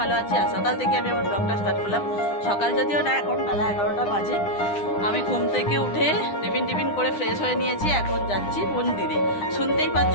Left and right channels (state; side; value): late; right; 9.9 ms